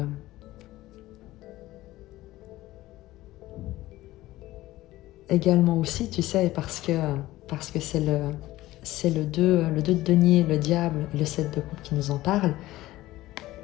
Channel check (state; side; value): quieter; right; 16.7 dB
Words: également aussi, tu sais, parce que c'est le 2 de denier, le diable, et le 7 de coupe qui nous en parle.